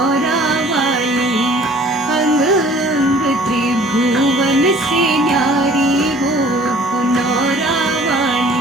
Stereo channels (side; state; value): both; normal; correlation 0.52